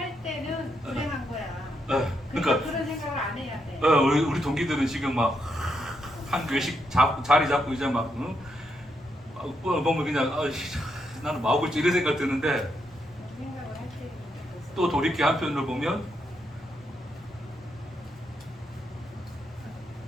때는 불행한 거야. 그러니까 그런 생각을 안 해야 돼. 우리 동기들은 지금 막 한 교회씩 자리 잡고 이제 막 응? 보면 그냥 아이씨, 나는 뭐 하고 있지 이런 생각 드는데 생각을 할 때. 또 돌이켜 한편으로 보면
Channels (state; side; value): normal; both; correlation 0.80